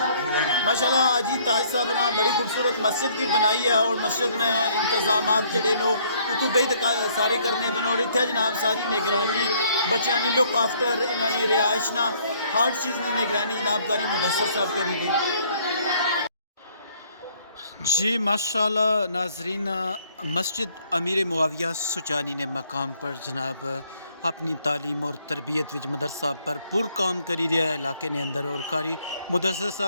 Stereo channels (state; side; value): inverted; both; correlation -0.63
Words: ماشاءاللہ حاجی تاج صاحب نے بڑی خوبصورت مسجد بھی بنائی ہے اور مسجد نے انتظامات جڑے نو تو بے سارے کرنے بنے اور اتنے جناب ساری نگرانی بچیاں کی لک آفٹر انہوں نے رہائش نہ ہر چیز کی نگرانی جناب قاری مدثر صاحب کری گئی۔ جی ماشاءاللہ ناظرین مسجد امیر معاویہ سچانی نے مقام پر جناب اپنی تعلیم اور تربیت وچ مدرسہ بھرپور کام کری رہا ہے علاقے نے اندر. اور قاری مدثر